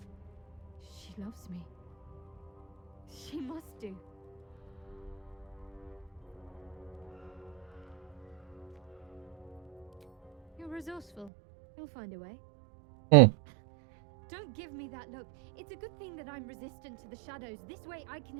She loves me. She must do. You're resourceful. You'll find a way. Hmm. Don't give me that look. It's a good thing that I'm resistant to the shadows. This way I can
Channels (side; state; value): left; drops out; at 11.3 s